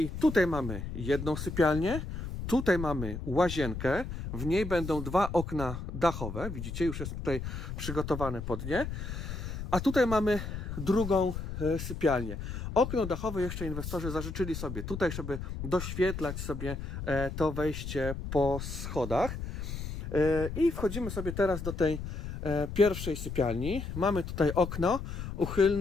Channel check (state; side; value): noise; left; rumble, 6 dB below the sound